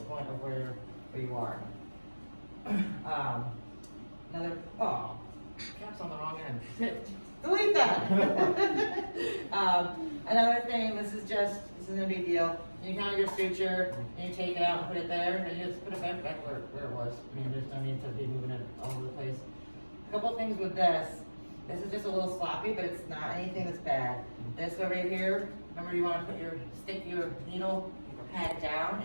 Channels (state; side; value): inverted; both; correlation -1.00